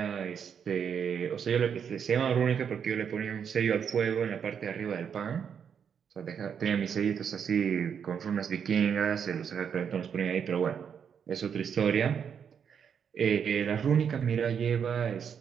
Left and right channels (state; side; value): quieter; left; 7.5 dB